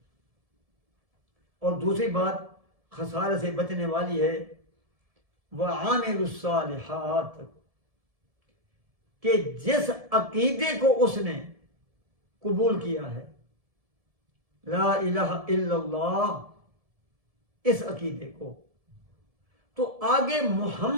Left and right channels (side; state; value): left; late; 1.7 ms